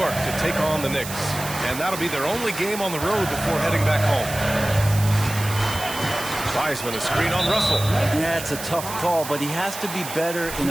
to take on the Knicks. And that'll be their only game on the road before heading back home. Wiseman, a screen on Russell. Yeah, it's a tough call, but he has to be better in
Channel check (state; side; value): noise; right; hiss, 10 dB below the sound